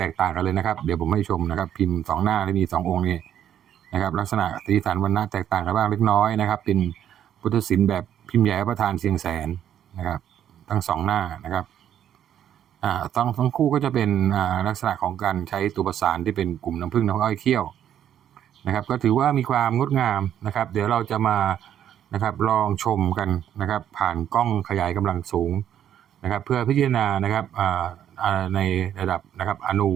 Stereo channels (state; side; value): quieter; left; 10.2 dB